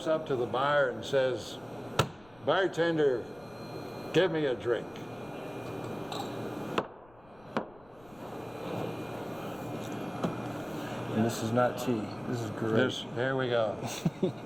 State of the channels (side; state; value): left; noise; rumble, 27 dB below the sound